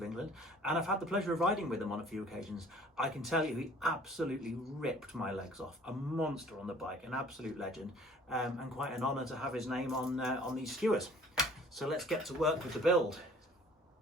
England, and I've had the pleasure of riding with him on a few occasions. I can tell you he absolutely ripped my legs off. A monster on the bike, an absolute legend, and quite an honour to have his name on these skewers. So let's get to work with the build.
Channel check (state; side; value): normal; both; correlation 0.53